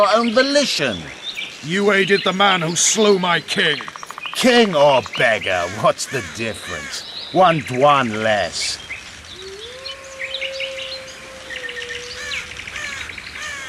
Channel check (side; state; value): both; identical; correlation 1.00